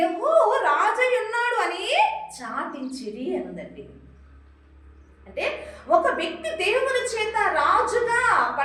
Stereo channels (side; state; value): both; identical; correlation 1.00